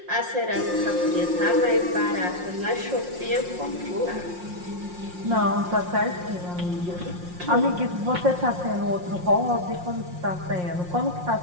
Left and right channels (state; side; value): late; left; 5.6 ms